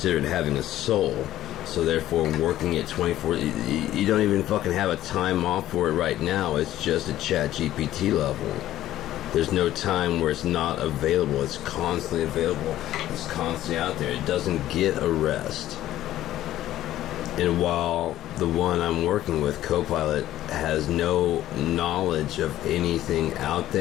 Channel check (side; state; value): right; quieter; 13.6 dB